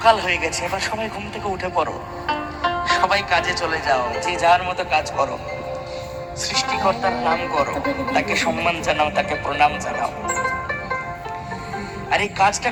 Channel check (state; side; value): identical; both; correlation 1.00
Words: হয়ে গেছে, এবার সবাই ঘুম থেকে উঠে পড়ো, সবাই কাজে চলে যাও, যে যার মতো কাজ করো, সৃষ্টিকর্তার নাম করো, তাকে সম্মান জানাও, তাকে প্রণাম জানাও। আর এই কাজটা